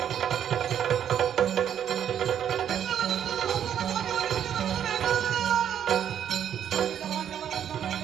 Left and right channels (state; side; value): quieter; left; 9.5 dB